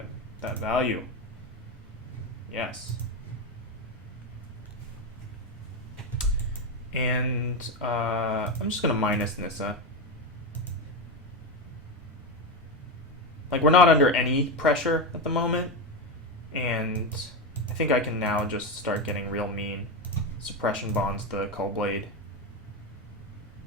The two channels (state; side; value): normal; both; correlation 0.13